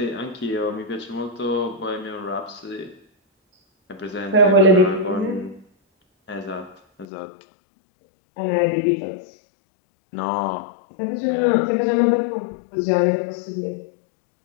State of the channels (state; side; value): drops out; right; at 7.1 s